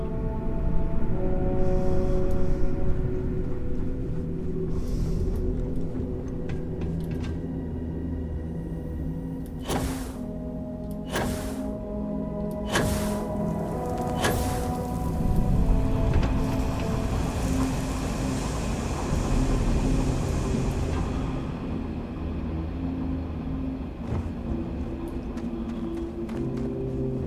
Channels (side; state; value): both; identical; correlation 1.00